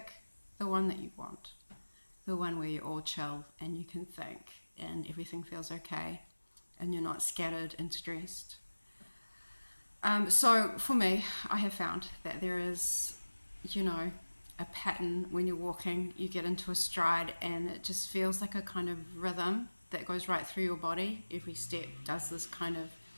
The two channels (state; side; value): inverted; both; correlation -1.00